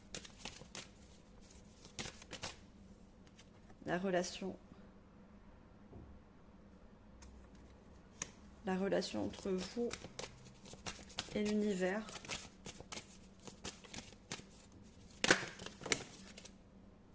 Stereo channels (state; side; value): identical; both; correlation 1.00